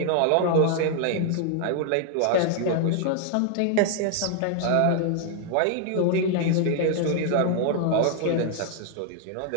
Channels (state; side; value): different; both; correlation 0.00